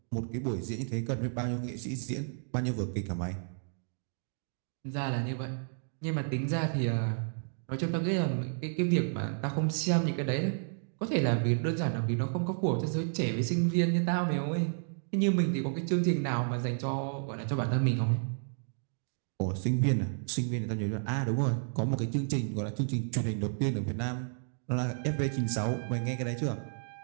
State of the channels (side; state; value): left; silent; digital silence